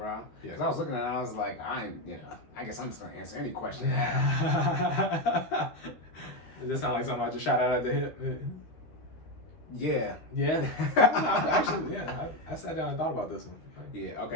Yeah. Because I was looking at it, I was like, I guess I'm just gonna answer any question now. Does this sound like something I just shot out at the hip? Yeah. Yeah. Actually, yeah. I sat down and thought about this one. Yeah.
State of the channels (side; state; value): right; late; 13 ms